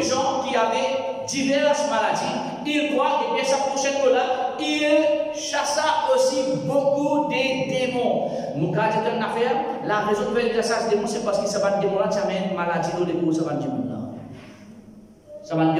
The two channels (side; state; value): both; identical; correlation 1.00